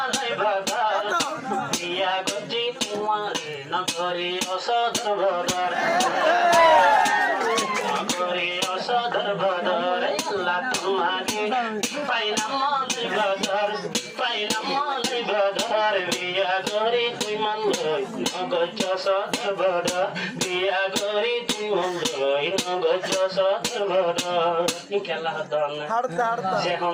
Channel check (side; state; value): both; identical; correlation 1.00